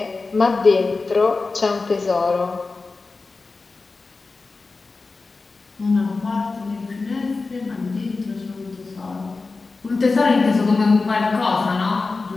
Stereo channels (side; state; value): right; quieter; 3.9 dB